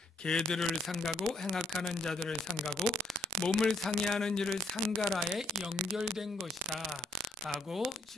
개들을 상가고 행악하는 자들을 상가고 몸을 상해하는 일을 상가라에 연결된 것이다 라고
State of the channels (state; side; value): normal; both; correlation 0.67